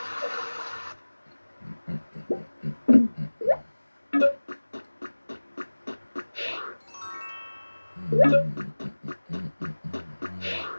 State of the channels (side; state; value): both; inverted; correlation -1.00